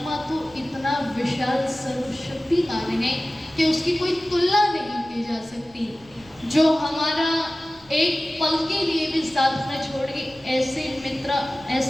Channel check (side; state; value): left; noise; rumble, 27 dB below the sound